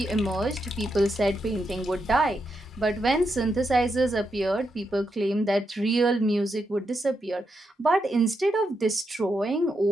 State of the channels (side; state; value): both; normal; correlation 0.83